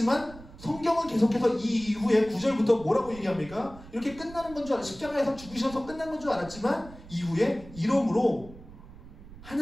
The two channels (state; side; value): noise; right; rumble, 18 dB below the sound